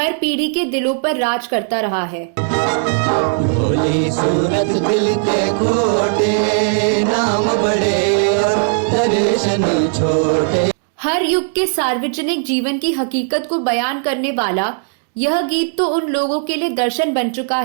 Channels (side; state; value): left; silent; digital silence